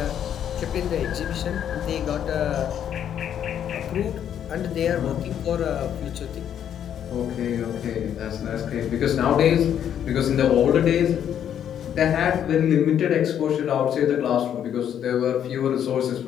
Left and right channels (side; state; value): right; quieter; 9.5 dB